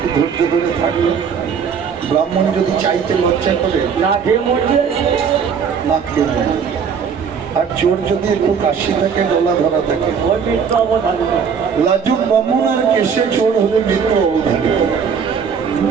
ধৈর্য ধরে থাকলে ব্রাহ্মণ যদি চাইতে লজ্জা করে না খেয়ে মরবে, না খেয়ে মরবে। আর চোর যদি একটু কাশি থাকে, গলা ধরা থাকে, লাজুক ব্রাহ্মণ আর কেশে চোর হলে মৃত্যু অবধারিত।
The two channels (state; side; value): quieter; left; 6.6 dB